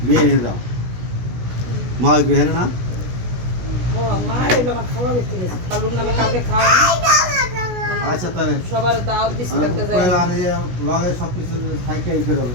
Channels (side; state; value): left; late; 16 ms